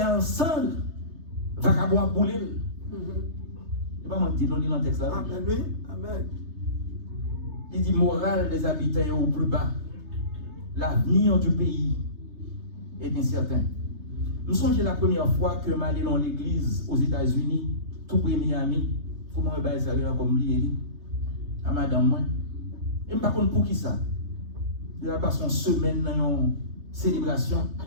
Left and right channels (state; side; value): late; left; 3.3 ms